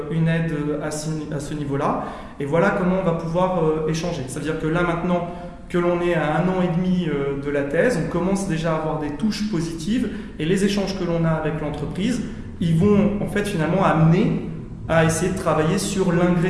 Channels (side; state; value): both; identical; correlation 1.00